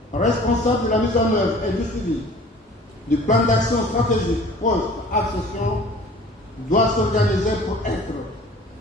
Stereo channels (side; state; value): both; normal; correlation 0.47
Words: responsable de la mise en œuvre et du suivi du plan d'action stratégique post-accession, doit s'organiser pour être